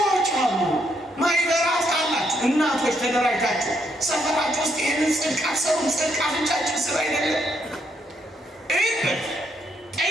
አሉ። ማይበራት አላችሁ እናቶች ተደራጅታችሁ ሰፈራችሁ ውስጥ ይህንን ጽድቅ አትሰሩም። ጽድቅ አፍንጫችን ስራ አይደለም። እይበት፣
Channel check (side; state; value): both; normal; correlation 0.75